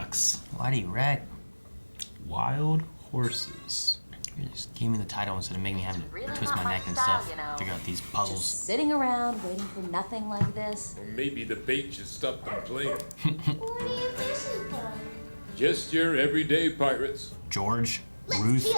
why do you wreck? Wild horses. You just gave me the title instead of making me have to Really twist not my my neck and style, stuff. you know. Figure out these puzzles. Just sitting around waiting for nothing like this. Or maybe the bait should stop them playing. What are you fishing for? Just your everyday pirates. George, Let's Ruth, feel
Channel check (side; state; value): both; inverted; correlation -1.00